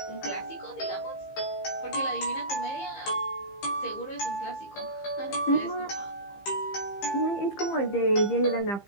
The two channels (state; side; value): late; right; 15 ms